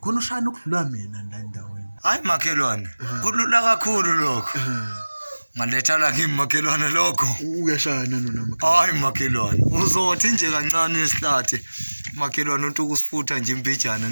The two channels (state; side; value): inverted; both; correlation -1.00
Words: ushaya okudlula mina la endaweni. Hayi makhelwane kulula kakhulu lokho. Ngaletha la kimi makhelwane lokho. Uyashaya nona makhelwane. Hayi makhelwane uzothi nje kancane isihlathi. Makhelwane untu ukusifutha nje imbijana